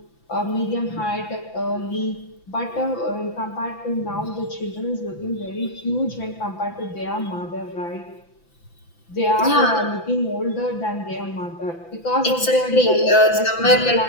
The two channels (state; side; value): late; right; 5.9 ms